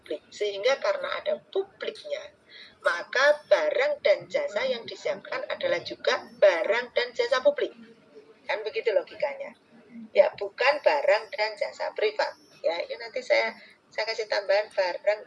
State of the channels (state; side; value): identical; both; correlation 1.00